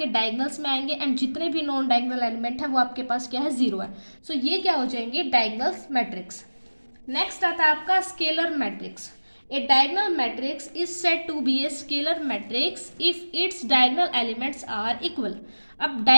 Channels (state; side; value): inverted; both; correlation -1.00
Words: डायगोनल्स में आएंगे एंड जितने भी नॉन डायगोनल एलिमेंट है वो आपके पास क्या है, जीरो है। सो ये क्या हो जाएंगे, डायगोनल्स मैट्रिक्स। नेक्स्ट आता है आपका scalar matrix. A diagonal matrix is said to be a scalar matrix if its diagonal elements are equal. अब